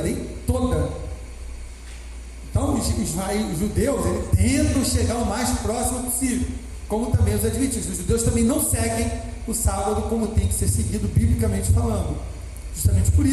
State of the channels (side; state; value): both; identical; correlation 1.00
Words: toda. Então os judeus eles tentam chegar o mais próximo possível, como também os adventistas. Os judeus também não seguem o sábado como tem que ser seguido biblicamente falando, justamente por